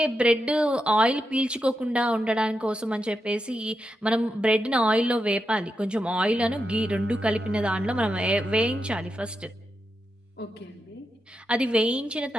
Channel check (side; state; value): both; normal; correlation 0.86